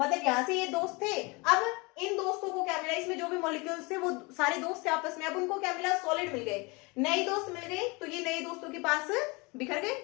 यहां से ये दोस्त थे, अब इन दोस्तों को क्या मिला, इसमें जो भी मॉलिक्यूल्स थे वो सारे दोस्त थे आपस में, अब उनको क्या मिला, सॉलिड मिल गए, नए दोस्त मिल गए, तो ये नए दोस्तों के पास बिखर गए,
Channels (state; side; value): quieter; right; 27.2 dB